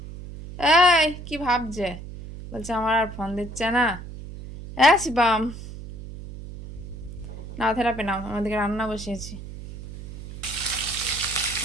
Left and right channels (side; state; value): right; noise; hum, 12 dB below the sound